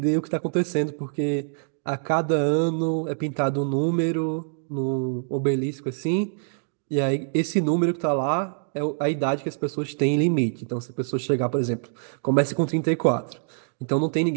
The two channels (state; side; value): silent; left; digital silence